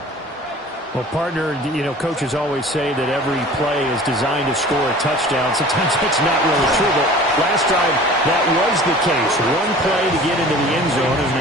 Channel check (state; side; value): normal; both; correlation 0.44